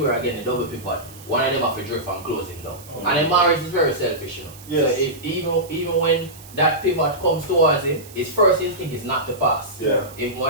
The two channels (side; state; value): right; noise; hiss, 20 dB below the sound